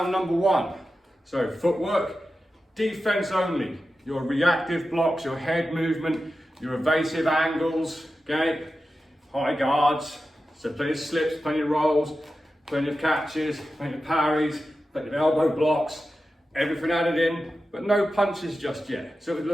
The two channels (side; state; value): both; normal; correlation 0.92